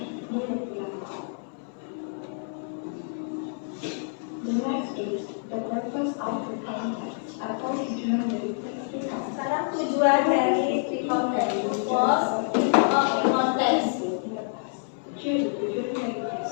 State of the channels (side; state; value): right; silent; 60 dB below the other